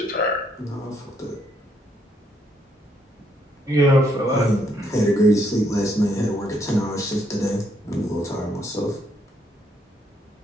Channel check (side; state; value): both; normal; correlation 0.72